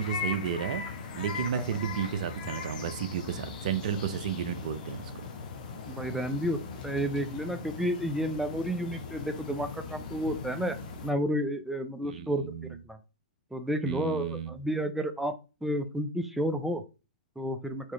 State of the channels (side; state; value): both; normal; correlation 0.26